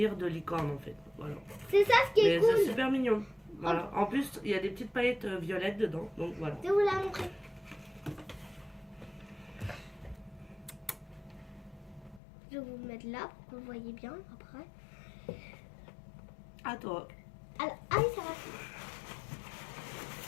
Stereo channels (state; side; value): drops out; right; at 12.2 s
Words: de licorne en fait. Voilà. c'est ça ce qui est Mais c'est cool. super mignon. Voilà. En plus, il y a des petites paillettes violettes dedans. Donc voilà. Je vais vous la montrer. Je vais vous mettre mettre là pour que vous voyez bien après. À toi. Alors, ah oui, ça va.